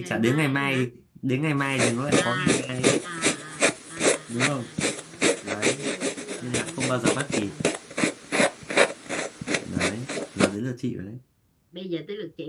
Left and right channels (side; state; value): both; identical; correlation 1.00